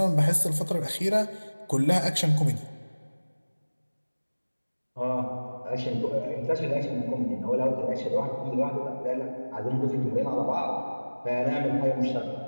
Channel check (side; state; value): both; inverted; correlation -1.00